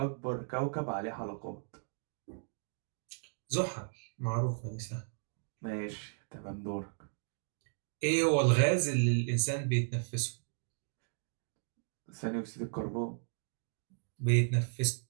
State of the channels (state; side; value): silent; left; digital silence